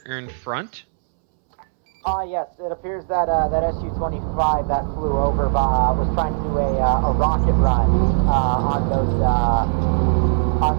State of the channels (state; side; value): silent; left; 66 dB below the other